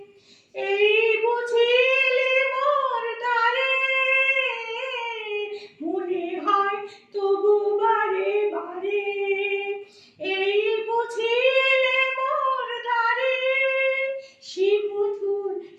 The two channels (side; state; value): both; identical; correlation 1.00